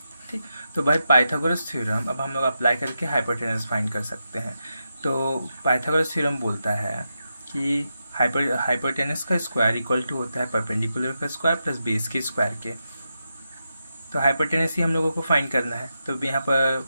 ठीक। तो भाई पाइथागोरस थ्योरम अब हम लोग अप्लाई करके हाइपोटेनस फाइंड कर सकते हैं। तो पाइथागोरस थ्योरम बोलता है कि हाइपोटेनस का स्क्वायर इक्वल टू होता है परपेंडिकुलर का स्क्वायर प्लस बेस के स्क्वायर के। तो हाइपोटेनस ही हम लोगों को फाइंड करना है। तो यहाँ पर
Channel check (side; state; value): both; inverted; correlation -0.88